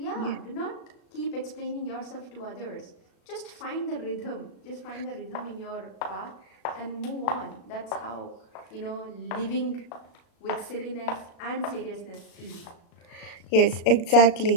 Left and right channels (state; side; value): late; right; 36 ms